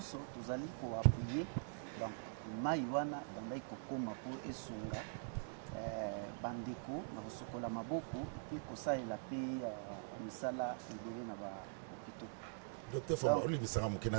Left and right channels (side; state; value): left; silent; digital silence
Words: tozali koappuye. Donc mai wana ebandaki kokoma mpo esunga bandeko na kosokola maboko mpe kosalela mpe misala ebele na bahôpitaux. Docteur Fwamba olibisaka moke